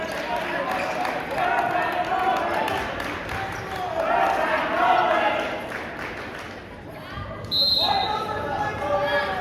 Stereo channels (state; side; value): identical; both; correlation 1.00